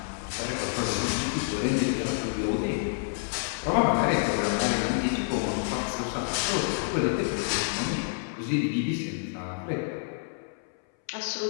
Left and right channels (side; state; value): right; silent; 59 dB below the other